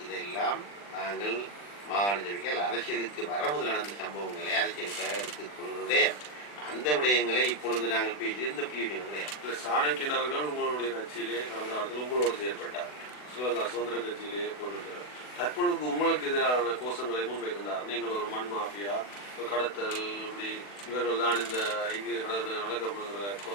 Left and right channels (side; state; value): right; late; 40 ms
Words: இதெல்லாம் நாங்கள் மாகாண சபைகள் அரசியலுக்கு வரமுதல் நடந்த சம்பவங்களை அரசியலுக்காக எடுத்துக்கொள்வதுடைய அந்த விடயங்களை இப்பொழுது நாங்கள் பேசி எந்த பிரயோஜனம் கிடையாது. சாணக்கியன் அவர்கள் உங்களுடைய கட்சியிலே கடந்த காலத்தில் உங்களோடு செயல்பட்டார், ஸ்ரீலங்கா சுதந்திர கட்சியிலே போட்டிருக்கிறார். தற்பொழுது உங்களுக்கு எதிரான கோஷங்களை முன்வைக்கின்றார். நீங்கள் ஒரு மண் மாஃபியா, கடத்தல், இப்படி இவர்கள் தான் இந்த இங்கு